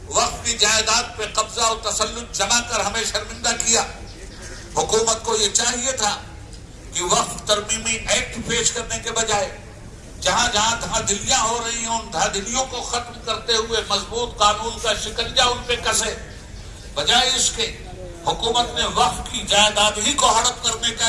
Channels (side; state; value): both; identical; correlation 1.00